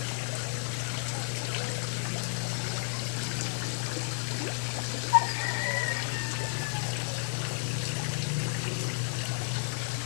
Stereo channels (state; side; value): silent; right; digital silence